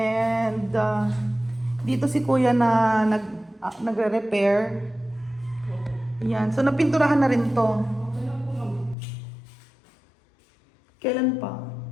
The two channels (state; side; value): drops out; right; at 9.0 s